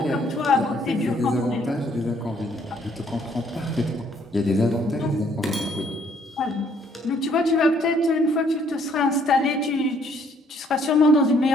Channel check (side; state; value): both; normal; correlation 0.65